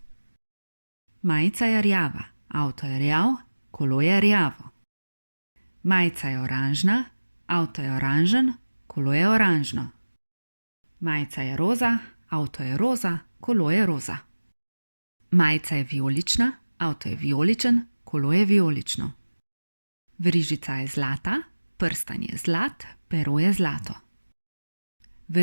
Majica je rjava, avto je rjav, kolo je rjavo. Majica je oranžna, avto je oranžen, kolo je oranžno. Majica je roza, avto je roza, kolo je roza. Majica je vijolična, avto je vijoličen, kolo je vijolično. Verižica je zlata, prstan je zlat, pero je zlato.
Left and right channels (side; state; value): both; inverted; correlation -1.00